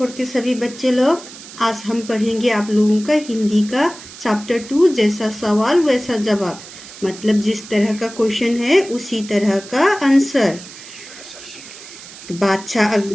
के सभी बच्चे लोग, आज हम पढ़ेंगे आप लोगों का हिंदी का चैप्टर 2। जैसा सवाल वैसा जवाब, मतलब जिस तरह का क्वेश्चन है उसी तरह का आंसर। तो बादशाह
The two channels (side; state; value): right; noise; hiss, 16 dB below the sound